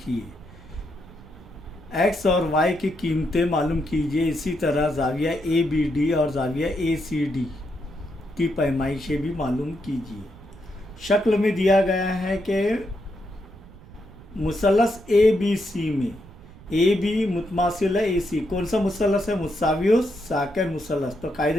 एक्स और वाई की कीमतें मालूम कीजिए। इसी तरह जाविया ए बी डी और जाविया ए सी डी की पैमाइशें भी मालूम कीजिए। शक्ल में दिया गया है कि मुसलस ए बी सी में ए बी मुतमासिल है ए सी। कौन सा मुसलस है? मुसावियो साकिन मुसलस। तो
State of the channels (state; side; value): noise; right; rumble, 20 dB below the sound